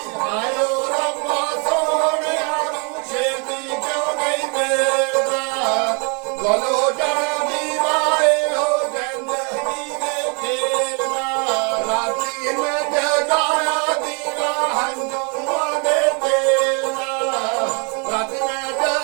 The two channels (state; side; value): quieter; left; 34.8 dB